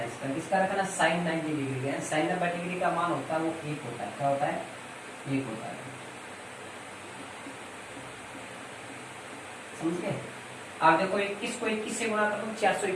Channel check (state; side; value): identical; both; correlation 1.00